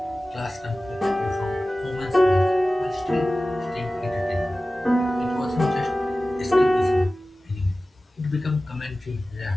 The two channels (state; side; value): normal; both; correlation 0.96